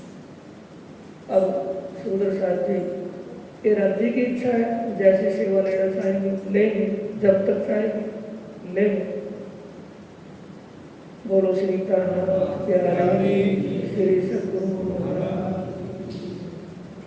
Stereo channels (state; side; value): identical; both; correlation 1.00